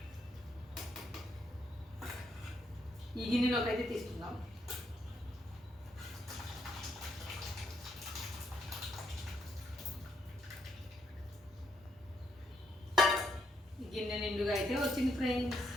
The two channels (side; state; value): both; normal; correlation 0.76